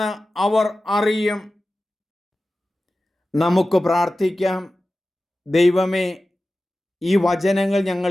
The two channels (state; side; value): normal; both; correlation 0.95